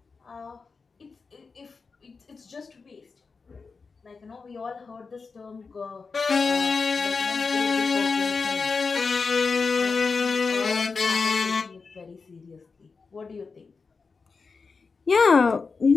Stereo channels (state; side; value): quieter; right; 4.7 dB